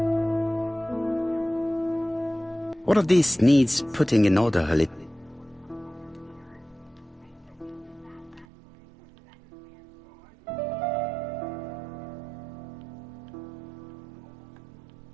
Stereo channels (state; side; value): drops out; left; at 8.5 s